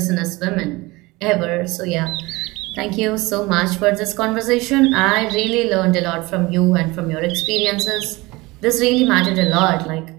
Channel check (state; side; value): quieter; left; 22.2 dB